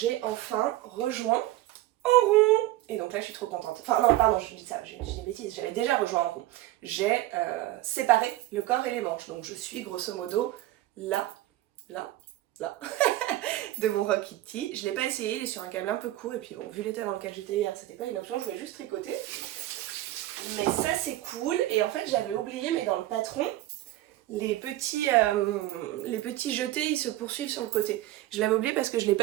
enfin rejoint en rond. Et donc là je suis trop contente. Enfin non, pardon, je dis ça, j'ai des bêtises, j'avais déjà rejoint en rond. J'ai séparé le corps et les manches. Donc je suis grosso modo là, de mon Rocky Tee. Je ne l'ai pas essayé, il est sur un câble un peu court. Et puis bon, vu l'état dans lequel j'étais hier, c'était pas une option, je voulais juste tricoter. Mais ça c'est cool. Et en fait j'avais oublié, mais dans le patron, les petits jetés ils se poursuivent sur le côté. Je l'avais oublié parce que je ne l'ai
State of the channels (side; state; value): left; quieter; 15.7 dB